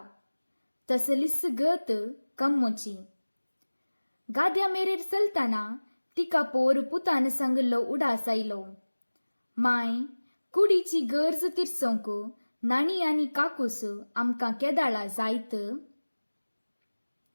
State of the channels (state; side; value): inverted; both; correlation -1.00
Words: तसलीच गत कम्मूची. गाद्या मेरेर चलतना तिका पोर पुतान सांगलो उडास आयलो. माय, कुडीची गरज तिरसोंक नाणी आनी काकूस आमकां केदाळा जायत.